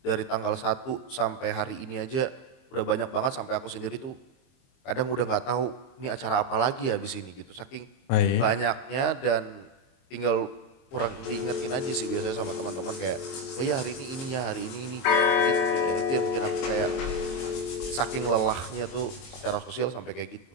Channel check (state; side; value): late; right; 22 ms